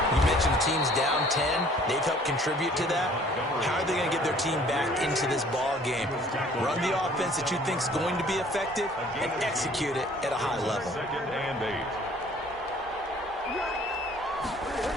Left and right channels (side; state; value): both; normal; correlation 0.55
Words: You mentioned the team's down 10. They've helped contribute to that. How are they going to get their team back into this ball game? Run the offense that you think is going to be effective and execute it at a high level. 2nd and 8.